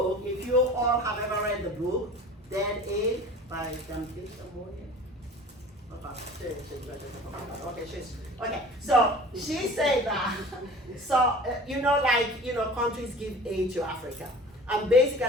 if you all have ever read the book, Dead Aid by Dambisha Moye. Okay, so she said that, countries give aid to Africa. And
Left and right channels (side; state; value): both; normal; correlation 0.42